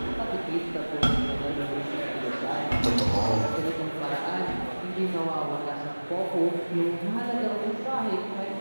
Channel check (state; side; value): inverted; both; correlation -1.00